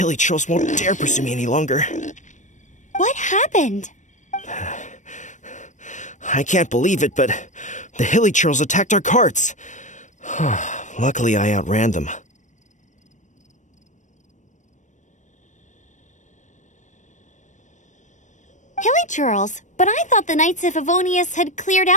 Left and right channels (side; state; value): right; late; 0.35 ms